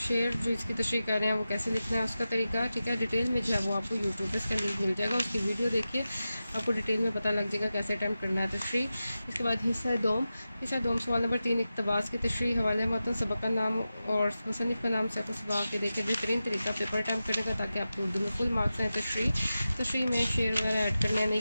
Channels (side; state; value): both; inverted; correlation -0.93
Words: जो इसकी तशरीह कर रहे हैं वो कैसे लिखना है उसका तरीका, ठीक है। डिटेल में जो है वो आपको यूट्यूब पर इसका लिंक मिल जाएगा, उसकी वीडियो देखिए, आपको डिटेल में पता लग जाएगा कैसे अटैम्प्ट करना है तशरीह। इसके बाद हिस्सा दोम सवाल नंबर 3 इक़्तिबास की तशरीह, हवाले मतन, सबक का नाम और मुसन्निफ़ का नाम सफ़ सबाक के देकर बेहतरीन तरीका पेपर अटैम्प्ट करने का, ताकि आपको उर्दू में फुल मार्क्स हैं। तशरीह में शेर वगैरह ऐड करने या नहीं